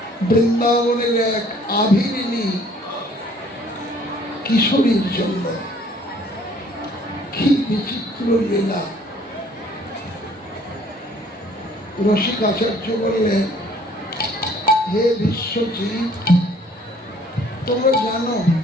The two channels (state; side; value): normal; both; correlation 0.58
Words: বৃন্দাবনের এক আভিরিনী কিশোরীর জন্য। কি বিচিত্র লীলা! রসিক আচার্য বললেন, হে বিশ্বজিৎ, তোমরা জানো